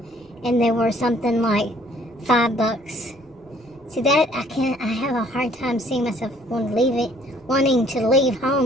and they were something like $5. See, that I have a hard time seeing myself wanting to leave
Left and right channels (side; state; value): both; normal; correlation 0.60